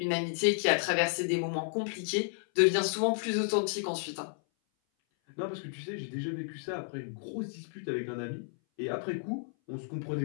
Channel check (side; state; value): right; silent; 56 dB below the other